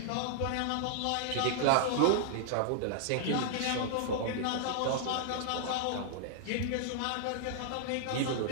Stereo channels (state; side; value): different; both; correlation -0.01